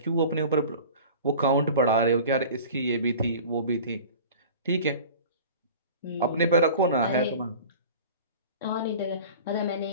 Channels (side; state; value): both; inverted; correlation -0.40